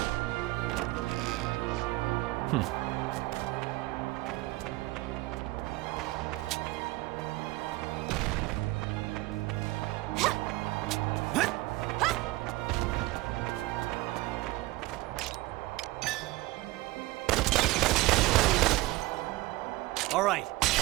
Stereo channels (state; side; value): quieter; left; 20.0 dB